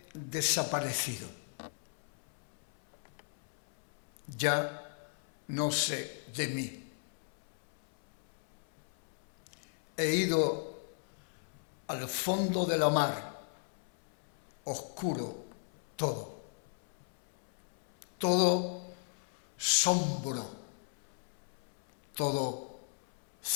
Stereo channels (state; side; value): silent; right; 53 dB below the other